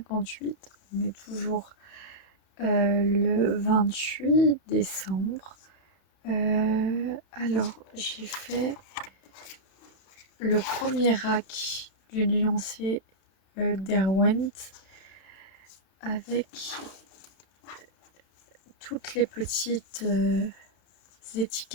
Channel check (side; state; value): right; late; 32 ms